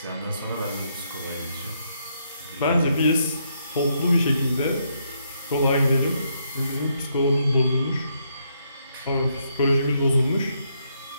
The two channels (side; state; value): both; inverted; correlation -0.76